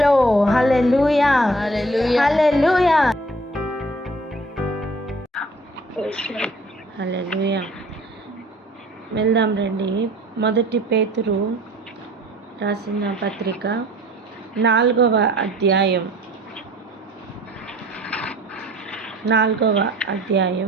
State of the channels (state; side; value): normal; both; correlation 0.52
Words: Hallelujah, hallelujah, hallelujah. వెళ్దాం రండి. మొదటి పేతురు రాసిన పత్రిక 4వ అధ్యాయం